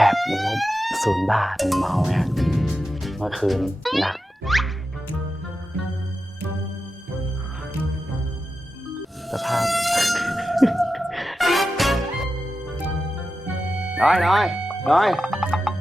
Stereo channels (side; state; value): both; normal; correlation 0.91